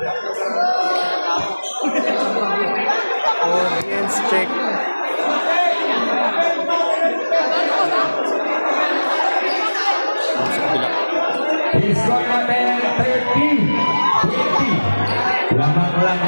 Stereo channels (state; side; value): inverted; both; correlation -1.00